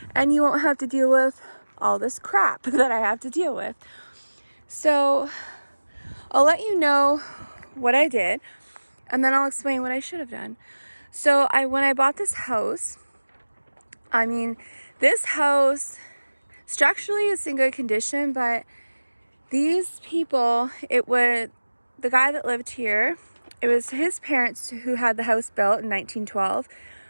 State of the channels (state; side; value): inverted; both; correlation -1.00